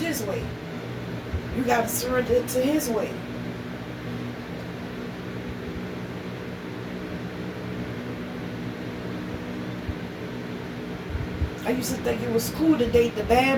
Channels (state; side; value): identical; both; correlation 1.00